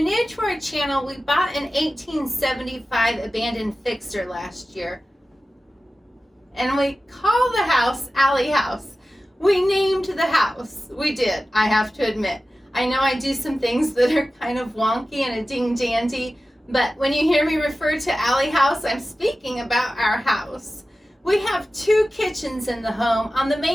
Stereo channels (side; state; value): both; normal; correlation 0.94